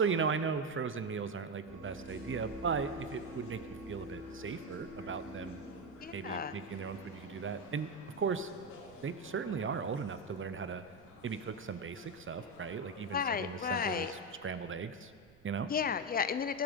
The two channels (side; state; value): right; noise; rumble, 26 dB below the sound